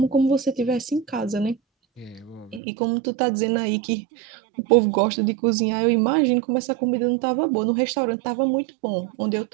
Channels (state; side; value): drops out; left; at 2.6 s